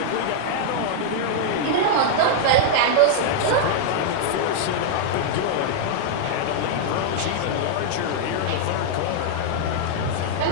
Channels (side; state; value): both; different; correlation -0.01